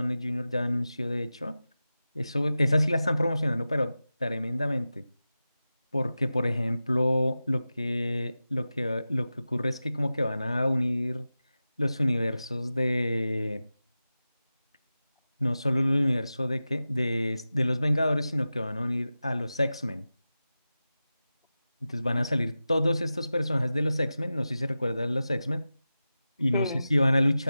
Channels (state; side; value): inverted; both; correlation -0.95